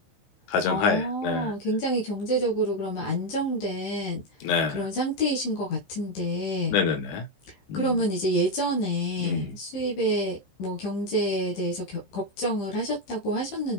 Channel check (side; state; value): right; late; 15 ms